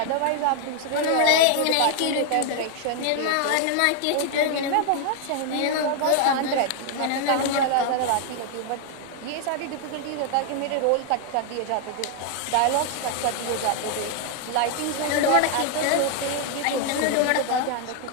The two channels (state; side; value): different; both; correlation 0.00